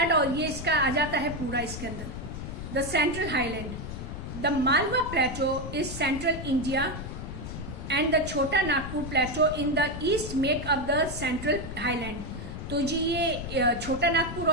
और ये इसका आ जाता है पूरा इसके अंदर। The central highland, the Malwa plateau is central India and the Chota Nagpur plateau in the east make up the central highland. तो जी ये छोटा नागपुर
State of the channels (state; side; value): noise; left; rumble, 8 dB below the sound